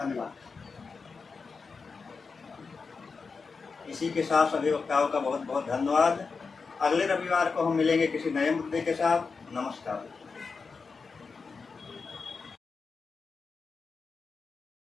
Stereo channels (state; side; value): quieter; right; 4.8 dB